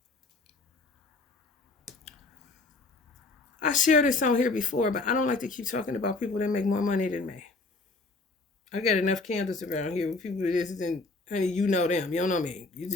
I shared this on here before, but I don't like to keep talking about people that make more money than me. I got enough candles around here with people that isn't, honey, you know them. You don't know me. You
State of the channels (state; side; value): quieter; right; 3.6 dB